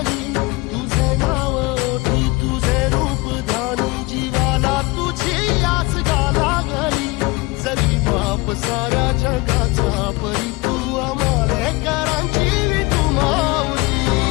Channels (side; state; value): right; quieter; 23.7 dB